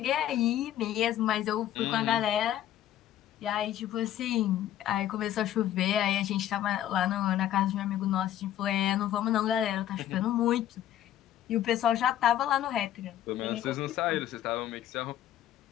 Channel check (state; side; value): quieter; right; 11.8 dB